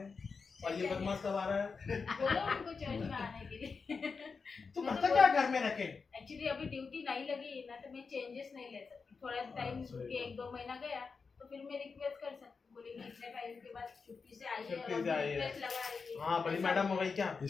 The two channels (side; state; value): right; quieter; 5.0 dB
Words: और ये बदमाश कब आ रहा है? बोलो उनको चर्च में आने के लिए। तू मैं तो करता क्या घर में रखे? एक्चुअली अभी ड्यूटी नहीं लगी ना, तो मैं चेंजेस नहीं ले सकती। थोड़ा टाइम के 1-2 महीना गया तो फिर मैं रिक्वेस्ट कर सकती हूँ, बोलेंगे इतने टाइम के बाद छुट्टी से आई है छुट्टी और से आई है। रिक्वेस्ट लगा रही है। हाँ बड़ी मैडम हो गई क्या?